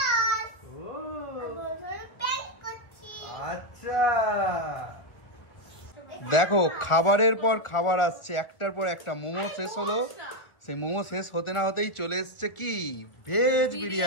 ও আচ্ছা, দেখো খাবারের পর খাবার আসছে, একটার পর একটা। মোমো শেষ হলো, সেই মোমো শেষ হতে না হতেই চলে এসছে কি ভেজ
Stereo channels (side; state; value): right; late; 1.7 ms